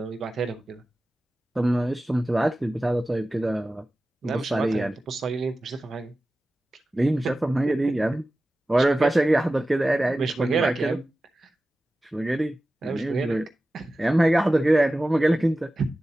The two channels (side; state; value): both; normal; correlation 0.95